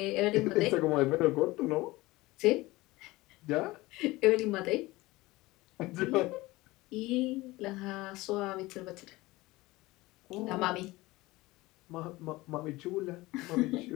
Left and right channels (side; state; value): right; quieter; 20.2 dB